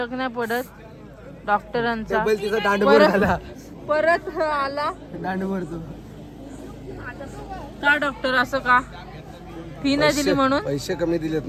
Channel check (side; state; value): both; identical; correlation 1.00